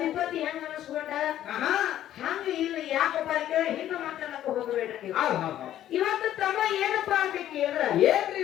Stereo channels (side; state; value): right; quieter; 12.1 dB